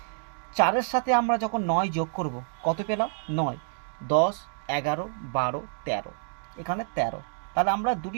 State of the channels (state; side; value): silent; left; digital silence